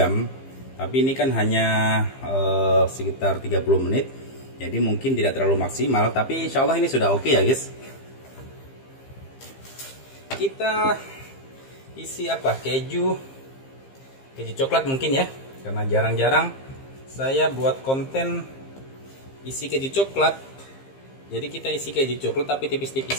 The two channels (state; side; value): late; right; 15 ms